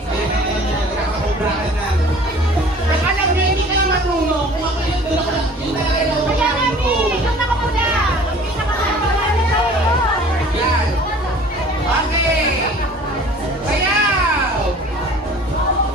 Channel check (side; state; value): both; normal; correlation 0.47